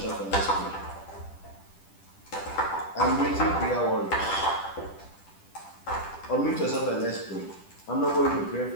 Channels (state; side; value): late; right; 10 ms